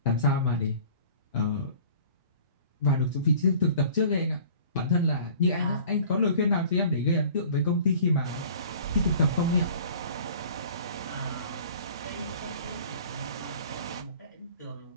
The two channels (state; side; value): inverted; both; correlation -0.47